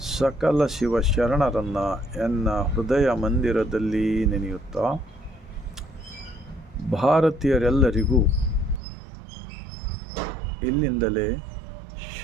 ಸಕಲ ಶಿವಶರಣರನ್ನು ಎನ್ನ ಹೃದಯ ಮಂದಿರದಲ್ಲಿ ನೆನೆಯುತ್ತಾ, ಭಾರತೀಯರೆಲ್ಲರಿಗೂ ಇಲ್ಲಿಂದಲೇ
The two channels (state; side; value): drops out; left; at 8.8 s